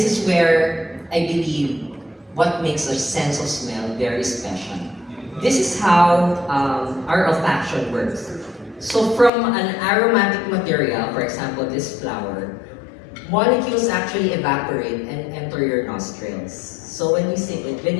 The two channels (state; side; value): drops out; right; at 9.3 s